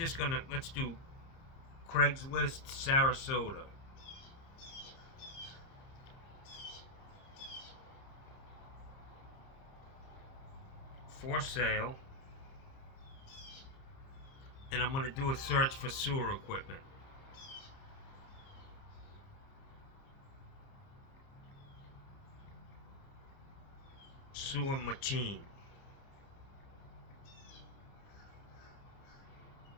gonna, let's do Craigslist, Sarasota. For sale. And I'm gonna do a search for sewer equipment. Sewer machine.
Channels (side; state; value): right; late; 30 ms